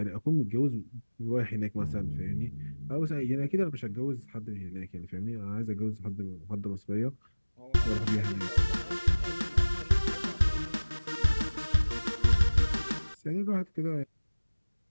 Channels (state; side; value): inverted; both; correlation -1.00